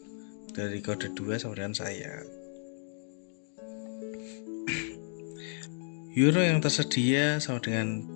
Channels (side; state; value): right; silent; 56 dB below the other